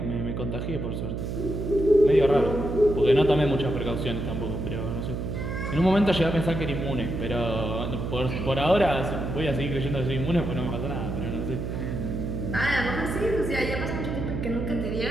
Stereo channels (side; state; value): right; noise; hum, 4 dB below the sound